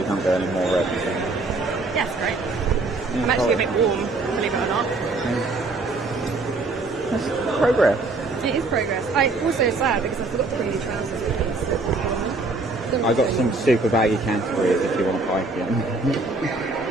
can't go any more red. Yes, great. I'm actually a bit warm, believe it or not. That's progress. It is progress. I also sad because I forgot to bring new trousers with me. I got some super baggy Canterbury's if you want to buy them.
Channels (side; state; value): left; quieter; 3.4 dB